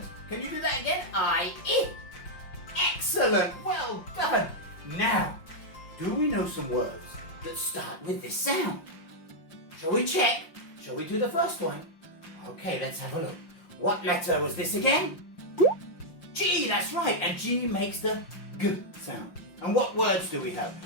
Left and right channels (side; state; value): right; late; 5.7 ms